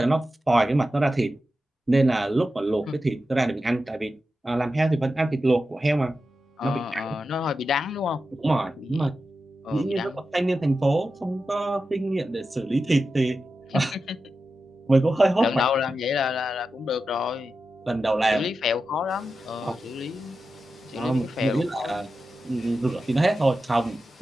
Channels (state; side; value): normal; both; correlation 0.91